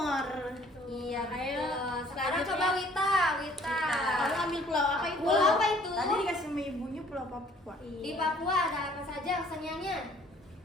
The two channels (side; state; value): both; normal; correlation 0.57